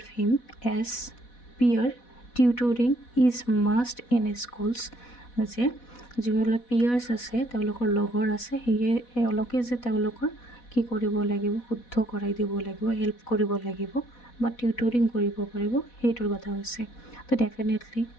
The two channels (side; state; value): right; late; 4.1 ms